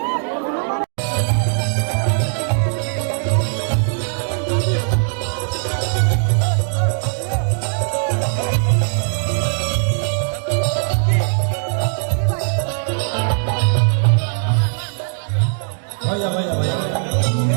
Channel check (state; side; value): silent; left; digital silence